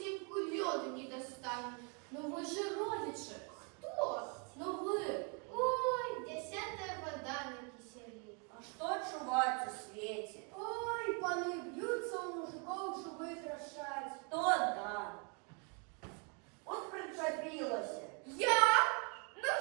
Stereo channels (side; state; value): left; quieter; 36.5 dB